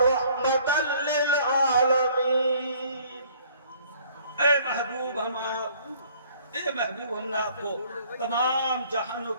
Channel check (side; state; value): both; inverted; correlation -0.57